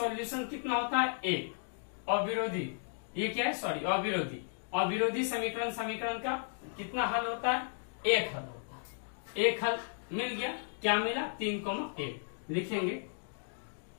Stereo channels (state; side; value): silent; right; digital silence